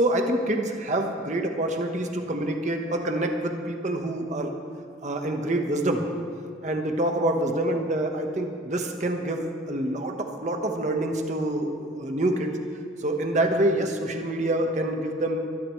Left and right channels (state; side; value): normal; both; correlation 0.46